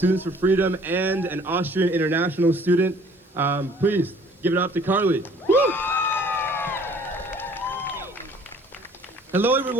for Freedom and an Austrian international student. Please give it up to Karl. Hello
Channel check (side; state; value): both; normal; correlation 0.55